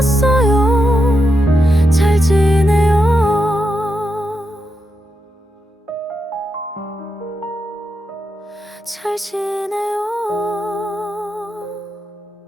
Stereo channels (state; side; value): normal; both; correlation 0.85